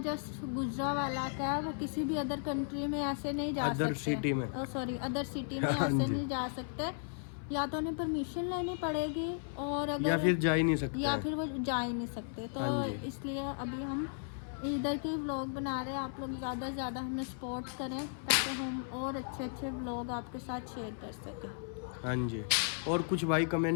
गुजरावाला का है, वो किसी भी अदर कंट्री में ऐसे नहीं जा सकते। अदर सिटी में। सॉरी, अदर सिटी में हाँ ऐसे जी। नहीं जा सकते। या तो उन्हें परमिशन लेनी पड़ेगी और या अगर फिर जा ही नहीं सकते या हैं। फिर वो जा ही नहीं सकते। तो हाँ जी। इसलिए अभी हम इधर के व्लॉग बना रहे हैं। आप लोग ज़्यादा से ज़्यादा हमें सपोर्ट करें ताकि हम और अच्छे अच्छे व्लॉग आपके साथ शेयर कर सकें। हाँ जी। और कुछ भाई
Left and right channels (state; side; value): silent; right; 54 dB below the other